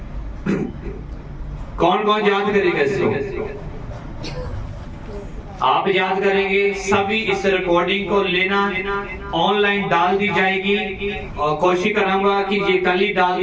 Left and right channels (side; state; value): both; identical; correlation 1.00